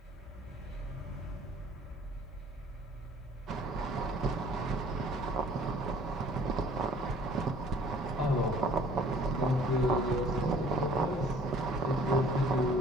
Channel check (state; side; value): normal; both; correlation 0.54